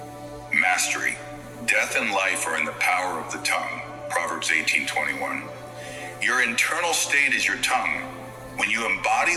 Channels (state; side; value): identical; both; correlation 1.00